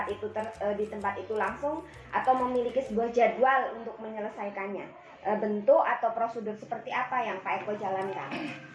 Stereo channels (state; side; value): identical; both; correlation 1.00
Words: itu langsung, atau memiliki sebuah jadwal untuk menyelesaikannya? Bentuk atau prosedur seperti apa yang Pak Eko jalankan?